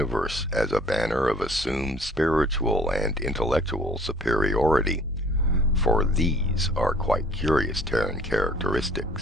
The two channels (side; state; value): both; normal; correlation 0.54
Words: as a banner of assumed spiritual and intellectual superiority, for these are quite curious Terran